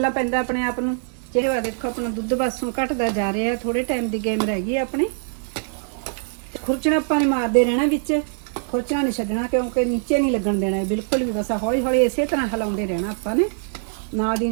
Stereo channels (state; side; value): silent; left; digital silence